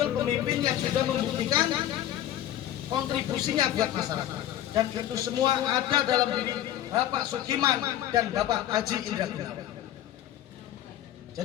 pemimpin yang sudah membuktikan kontribusinya buat masyarakat. Dan itu semua ada dalam diri Bapak Sukiman dan Bapak Haji Indra Gunawan.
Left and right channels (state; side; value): quieter; right; 12.4 dB